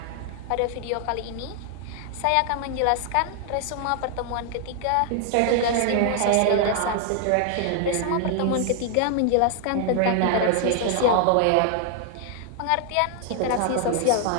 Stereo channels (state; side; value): different; both; correlation 0.00